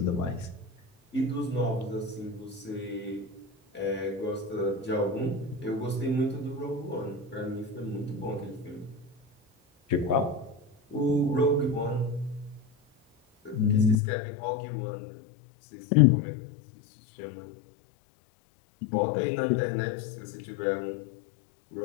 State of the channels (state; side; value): drops out; right; at 14.0 s